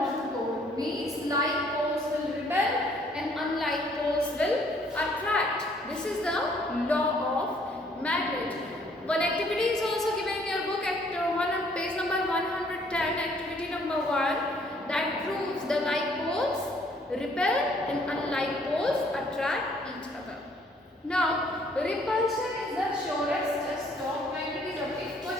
pole. Means like poles will repel and unlike poles will attract. This is the law of magnet. One activity is also given in your book at page number 110, activity number 1, that proves the like poles repel and unlike poles attract each other. Now, repulsion is the surest test of magnetism. If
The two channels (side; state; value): both; normal; correlation 0.63